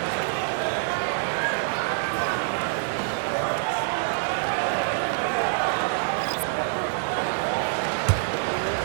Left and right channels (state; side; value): silent; left; digital silence